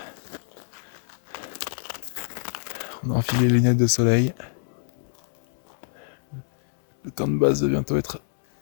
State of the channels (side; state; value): right; silent; 61 dB below the other